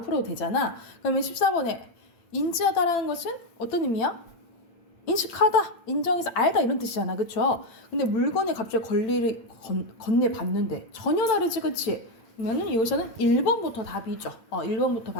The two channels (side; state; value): right; late; 8.9 ms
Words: 되잖아. 그러면 14번에 인지하다라는 것은 어떤 의미야? 인식하다, 인정해서 알다 이런 뜻이잖아, 그쵸? 근데 물건에 갑자기 권리를 건네받는데 전혀 다르지, 그치? 그러면은 여기서는 1번부터 답이죠. 1번부터